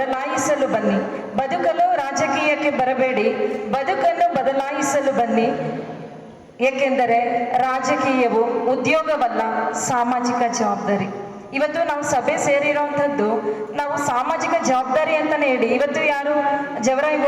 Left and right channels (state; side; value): identical; both; correlation 1.00